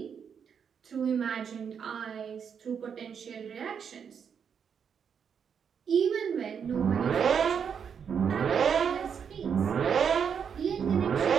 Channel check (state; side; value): quieter; left; 7.2 dB